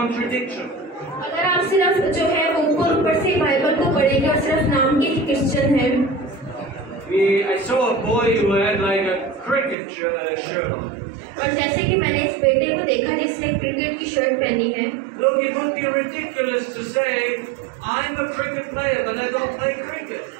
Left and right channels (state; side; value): drops out; left; at 9.8 s